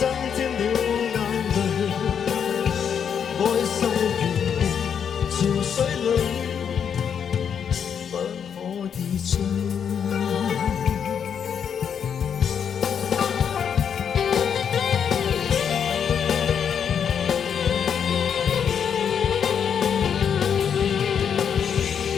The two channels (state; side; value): quieter; right; 7.7 dB